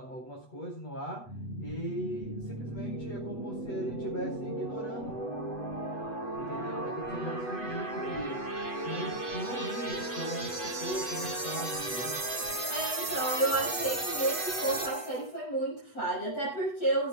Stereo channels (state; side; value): late; right; 8.0 ms